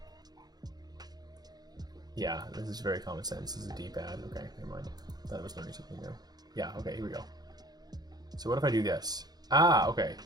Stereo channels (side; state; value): left; late; 0.19 ms